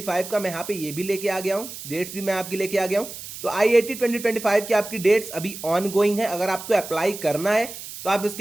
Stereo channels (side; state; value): right; noise; hiss, 11 dB below the sound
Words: का मैं यहाँ पे ये भी लेके आ गया हूँ, डेट्स भी मैं आपकी लेके आ गया हूँ। तो IAT 2025 की आपकी डेट्स अभी ऑन गोइंग है। अगर आपको अप्लाई करना है तो आप